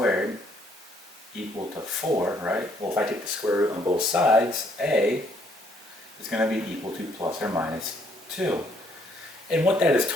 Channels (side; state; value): both; normal; correlation 0.67